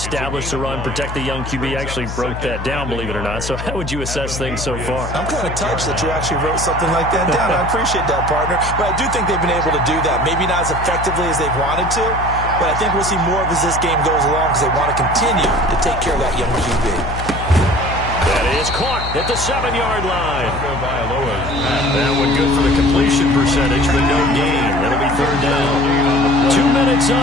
the run, protect the young QB. Actually broke that down, believe it or not. So how would you assess things so far? I'm kind of touched that you actually wrote something like that down. I appreciate that, partner. But I do think they've been able to do that. Maybe not as effectively as they've wanted to, but I think we'll see more of as this game goes along because they want to continue to take care of that young QB. That is caught at the 7-yard line. That one good for the completion percentage, but no gain. That'll be third down. 2 minutes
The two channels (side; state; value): left; noise; hum, 7 dB below the sound